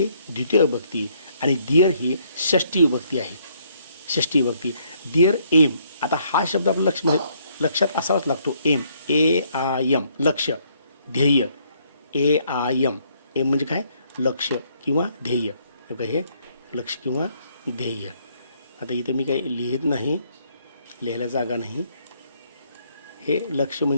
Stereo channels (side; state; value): both; inverted; correlation -0.68